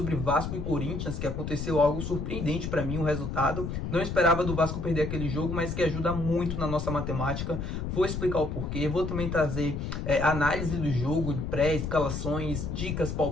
Vasco e Corinthians, que aconteceu algo surpreendente para mim, o resultado. Não esperava do Vasco perder aquele jogo, mas que ajuda muito na nossa matemática. Vou explicar o porquê, vou também trazer análise do jogo, de pré-escalações, dicas,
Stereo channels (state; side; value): noise; left; rumble, 4 dB below the sound